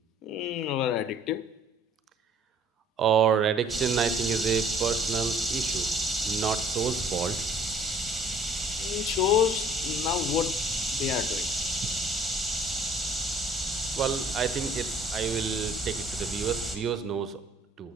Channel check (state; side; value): normal; both; correlation 0.56